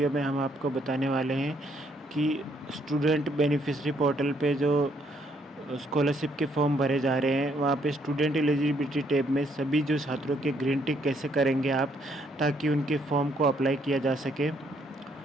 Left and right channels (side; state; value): both; normal; correlation 0.70